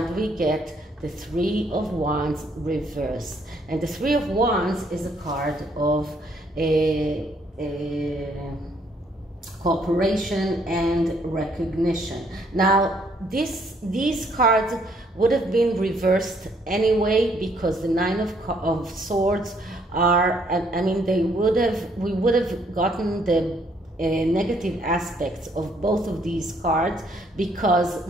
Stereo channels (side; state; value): both; normal; correlation 0.67